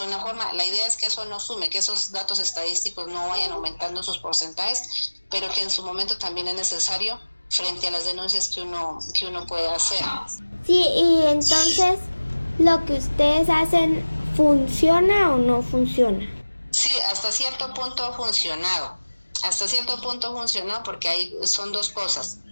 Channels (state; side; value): inverted; both; correlation -1.00